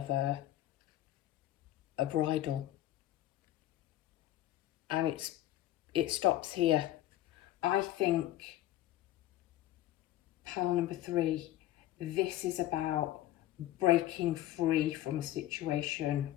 a bridle. And it stops here. I think pile number 3, this is about breaking free from a situation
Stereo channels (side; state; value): right; quieter; 14.2 dB